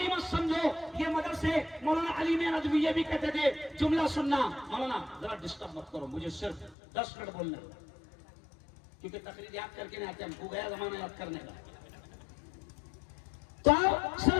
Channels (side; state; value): right; drops out; at 6.8 s